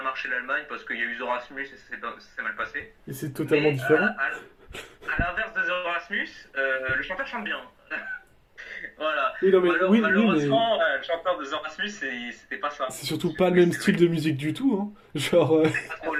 marché l'Allemagne parce qu'il y a eu The Rasmus et ça s'est mal passé. Et c'est totalement différent. À l'inverse de The Rasmus, le chanteur chante bien. Voilà. Oui, non, mais, Malheureusement, le chanteur de The Rasmus, c'était pas ça. C'est surtout pas le même style de musique du tout, hein. Genre. C'est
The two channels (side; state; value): both; identical; correlation 1.00